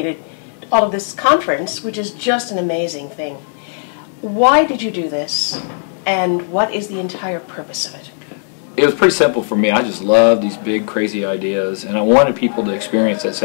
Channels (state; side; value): silent; right; digital silence